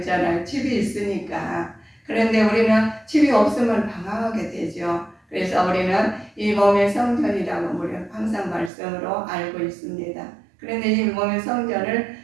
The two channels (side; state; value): left; drops out; at 8.7 s